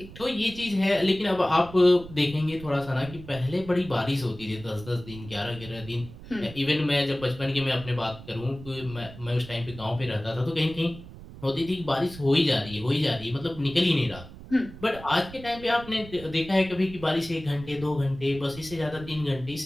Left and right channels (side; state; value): right; noise; rumble, 16 dB below the sound